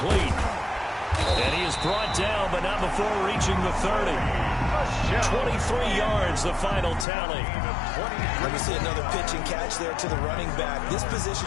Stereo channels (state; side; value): drops out; right; at 7.1 s